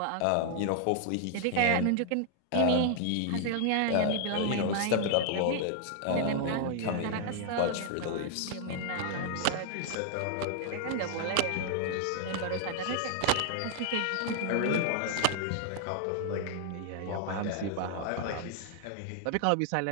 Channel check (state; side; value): different; both; correlation 0.00